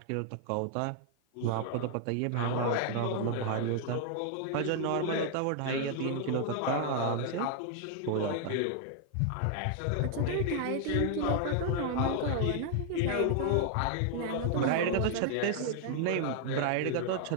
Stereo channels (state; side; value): different; both; correlation 0.00